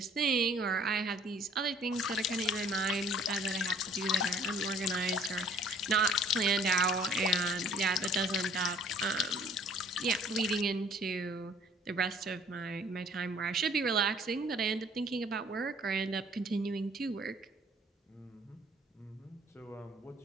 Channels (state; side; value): normal; both; correlation 0.55